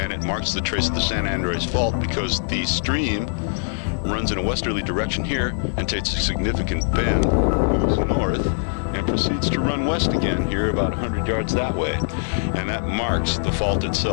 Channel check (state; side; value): silent; right; digital silence